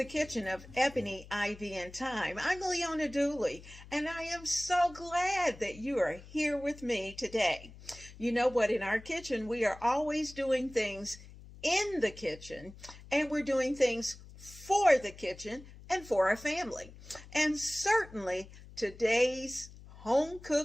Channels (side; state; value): left; noise; hum, 18 dB below the sound